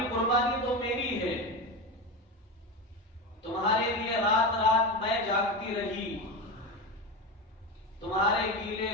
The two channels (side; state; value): both; normal; correlation 0.20